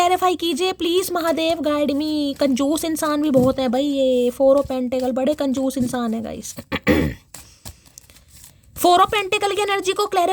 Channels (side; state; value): both; identical; correlation 1.00